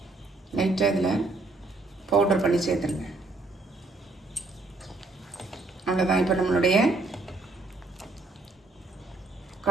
லைட்டாக இதில் பவுடர் பண்ணி சேர்த்துருங்க. அவ்வளோதான். இப்போ நம்மளுடைய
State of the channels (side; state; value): left; quieter; 3.2 dB